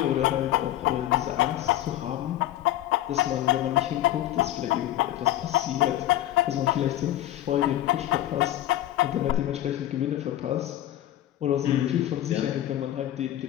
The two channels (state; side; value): quieter; right; 13.7 dB